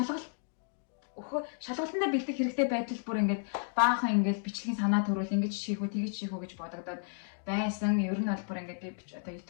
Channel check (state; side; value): silent; right; digital silence